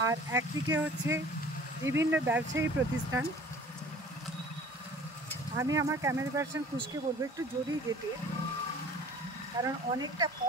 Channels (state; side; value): normal; both; correlation 0.48